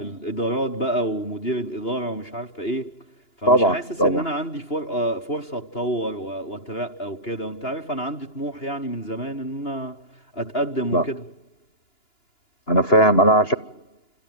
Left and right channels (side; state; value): right; late; 2.9 ms